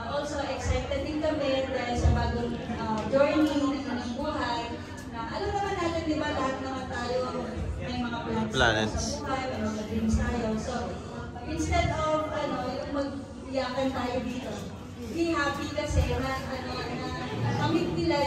also excited din kami dahil sa bagong journey ng buhay na alam naman natin diba lahat naman tayo may mga plans sa buhay, may mga dreams tayo. So, instead of yung mag-iyakan tayo dito, be happy kasi na kamit nila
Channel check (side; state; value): both; identical; correlation 1.00